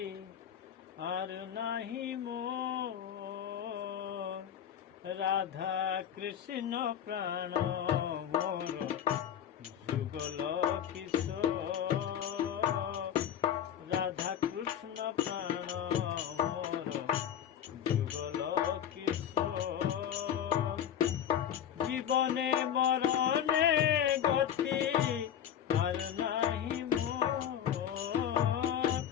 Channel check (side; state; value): right; quieter; 9.6 dB